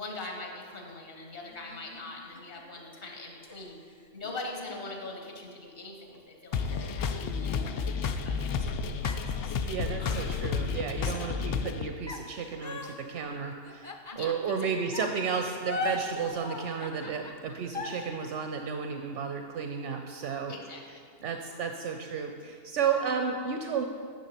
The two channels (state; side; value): late; left; 2.8 ms